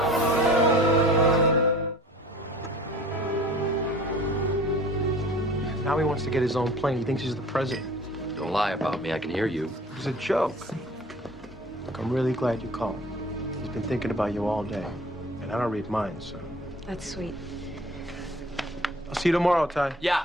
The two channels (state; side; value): normal; both; correlation 0.46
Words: Now he wants to get his own plane. He thinks he's the president. Don't lie about me. I can hear you. It was a joke. Look, I'm really glad you called. He's been thinking about you all day. And I don't read minds, so. That's sweet. I'll see you tomorrow, Ty. Yeah.